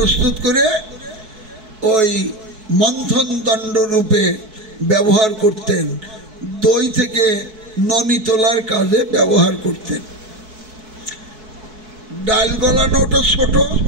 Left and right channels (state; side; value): late; left; 4.6 ms